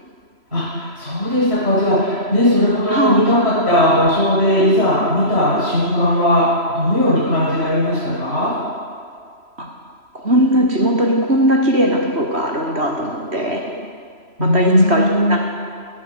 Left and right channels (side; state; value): left; late; 3.0 ms